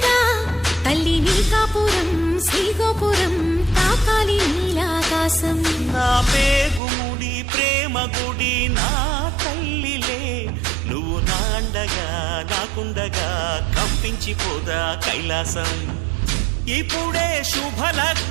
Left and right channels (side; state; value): left; drops out; at 6.8 s